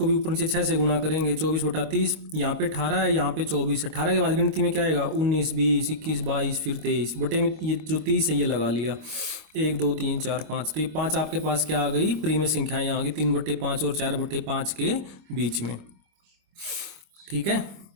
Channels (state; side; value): late; left; 25 ms